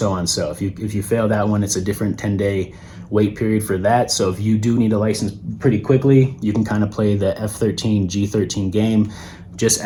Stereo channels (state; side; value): identical; both; correlation 1.00